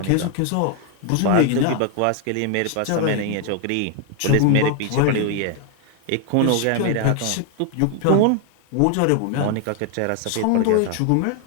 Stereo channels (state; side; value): different; both; correlation 0.00